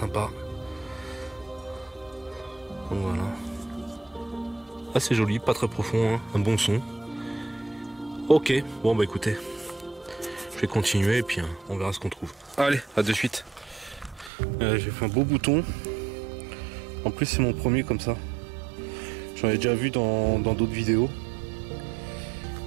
Donc voilà. Assez joli, pas très profond, hein. Un bon son. Ok, bon bah écoutez. Je vais continuer et puis hein, on verra ce qu'on trouve. Allez, à de suite. J'ai fait un beau bouton. En plus c'est mon premier comme ça. J'en ai déjà vu dans d'autres vidéos.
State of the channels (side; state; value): left; drops out; at 14.3 s